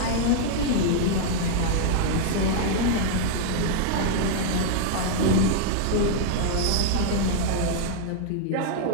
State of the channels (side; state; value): both; different; correlation -0.01